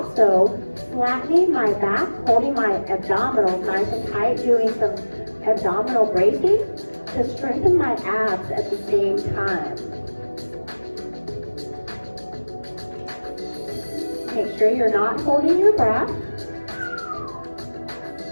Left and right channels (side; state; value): both; inverted; correlation -1.00